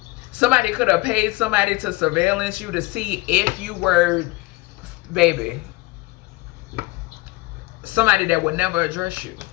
Somebody could have paid somebody to surveillance you to see if you were, baby, somebody that would never address you.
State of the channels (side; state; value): right; quieter; 21.7 dB